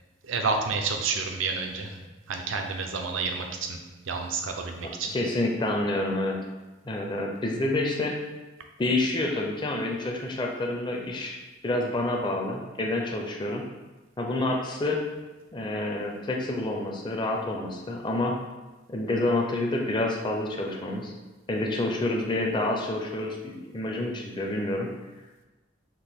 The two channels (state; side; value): normal; both; correlation 0.43